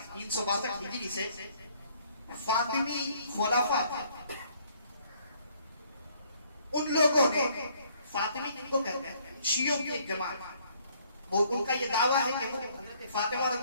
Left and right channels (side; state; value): both; inverted; correlation -0.63